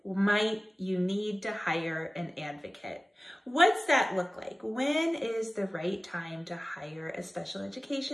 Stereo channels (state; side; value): normal; both; correlation 0.96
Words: might you need to hire an advocate? What's that look like? When is the right time to hire a special